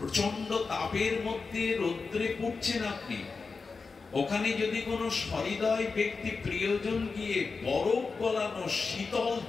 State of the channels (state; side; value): quieter; right; 4.5 dB